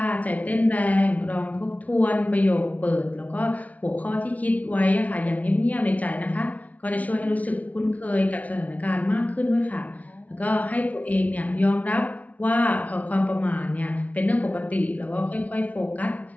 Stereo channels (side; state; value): right; late; 0.070 ms